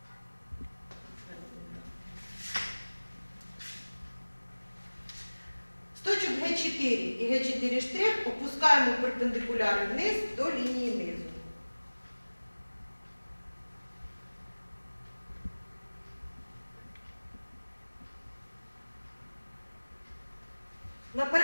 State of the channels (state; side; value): inverted; both; correlation -1.00